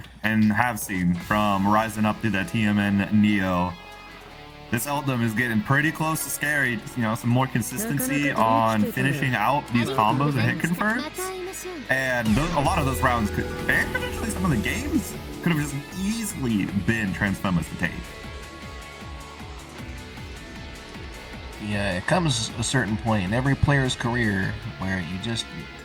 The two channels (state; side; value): identical; both; correlation 1.00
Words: and have seen from rising up to the TMN Neo. This Eldom is getting pretty close to scary. You know, some more consistency on finishing out these combos and hit converts. And a lot of those rounds could, and potentially some of the games, could have just easily been Transfemma's to take. Yeah, it comes a certain point in every player's career where you just